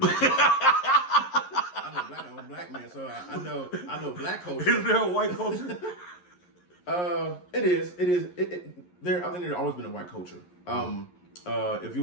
culture. I'm a black man, so I know black culture. Is there a white culture? It is. I think there's always been a white culture. If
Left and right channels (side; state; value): right; late; 11 ms